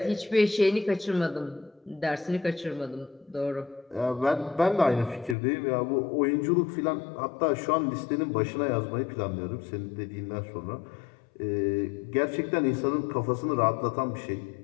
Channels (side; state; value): right; drops out; at 5.4 s